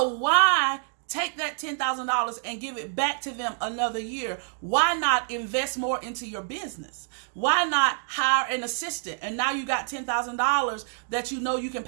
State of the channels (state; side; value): silent; left; digital silence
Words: why take that $10,000 and give it back to them another year? Why not invest more into your business? Why not hire an assistant? And now you got $10,000 that you know you can